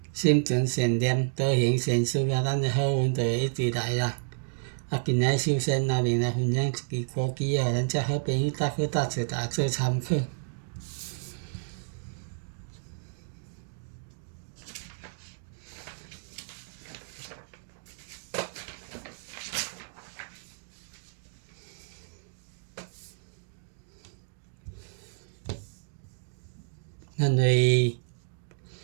心存善念，多行善事啊，咱的好运就会一直来啦。今日首先阿明来分享一支歌曲，互咱遮好朋友大家多谢，大家做参考。咱为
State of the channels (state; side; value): silent; left; digital silence